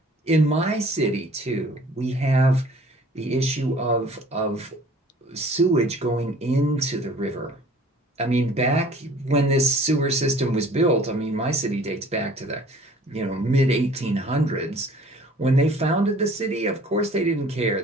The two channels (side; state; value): both; normal; correlation 0.51